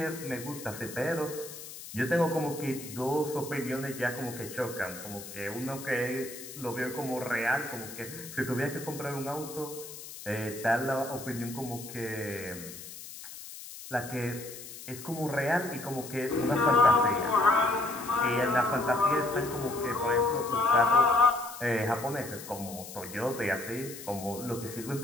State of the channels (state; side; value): noise; left; hiss, 13 dB below the sound